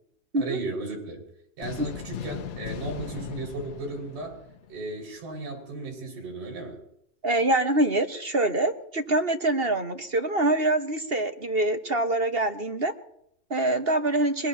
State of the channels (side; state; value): left; late; 2.8 ms